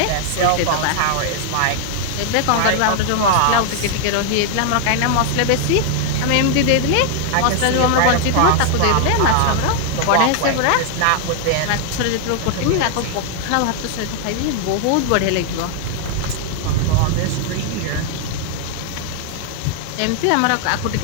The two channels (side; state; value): both; different; correlation 0.00